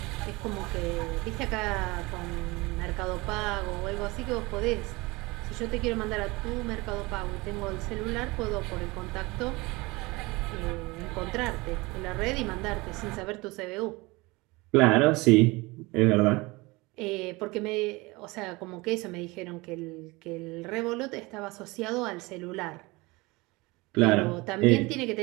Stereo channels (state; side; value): quieter; left; 23.4 dB